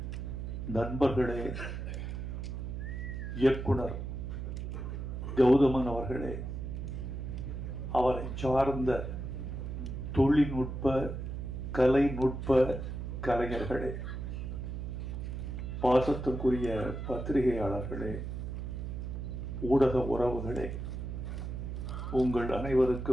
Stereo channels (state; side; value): noise; right; hum, 5 dB below the sound